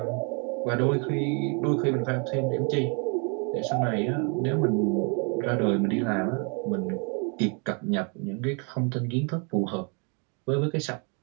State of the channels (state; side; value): quieter; left; 35.9 dB